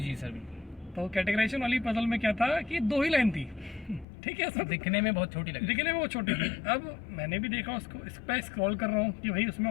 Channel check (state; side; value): drops out; right; at 4.0 s